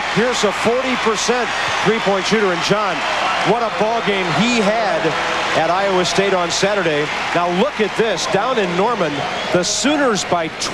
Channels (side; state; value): both; identical; correlation 1.00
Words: Pierce, a 40% three-point shooter. And John, what a ball game he had at Iowa State on Saturday. Now look at this. Down in Norman, the Sooners by